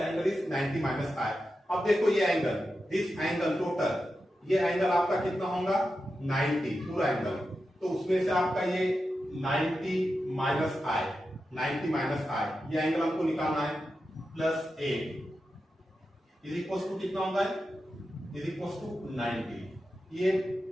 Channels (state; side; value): normal; both; correlation 0.90